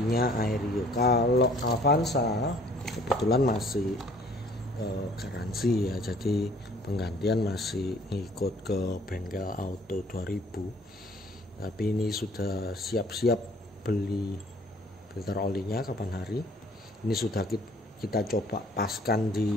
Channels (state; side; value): normal; both; correlation 0.56